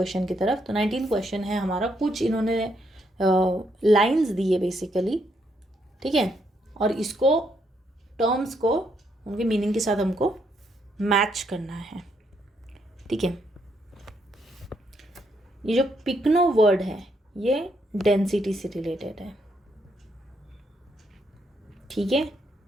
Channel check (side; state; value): both; normal; correlation 0.75